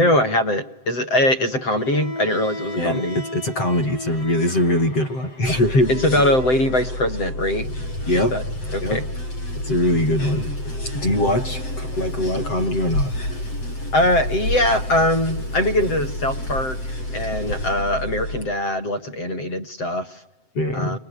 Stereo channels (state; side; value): late; right; 7.7 ms